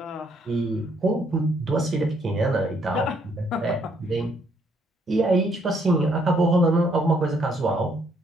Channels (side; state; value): both; normal; correlation 0.69